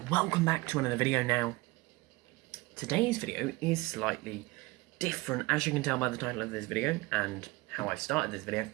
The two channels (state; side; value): quieter; left; 21.7 dB